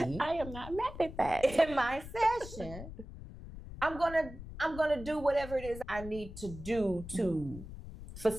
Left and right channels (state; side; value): noise; left; rumble, 12 dB below the sound